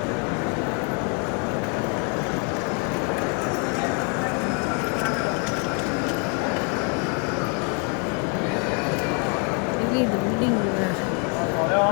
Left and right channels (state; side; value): quieter; right; 36.2 dB